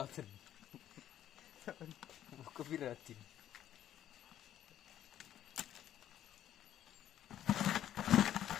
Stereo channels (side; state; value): right; quieter; 11.4 dB